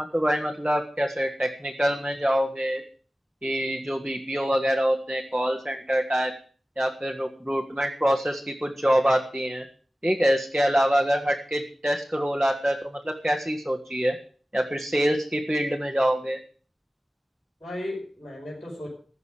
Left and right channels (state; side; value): normal; both; correlation 0.96